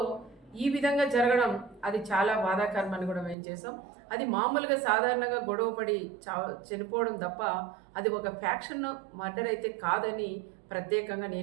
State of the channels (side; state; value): left; drops out; at 3.4 s